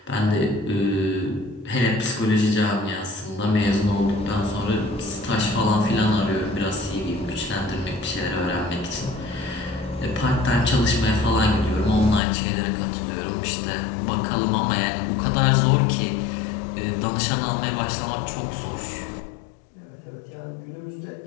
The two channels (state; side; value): drops out; right; at 12.2 s